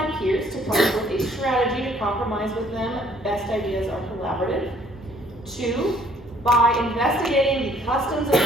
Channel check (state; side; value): normal; both; correlation 0.60